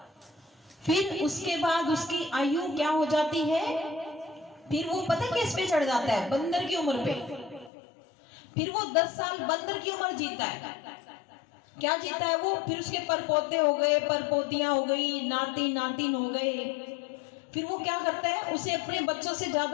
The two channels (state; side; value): drops out; right; at 7.7 s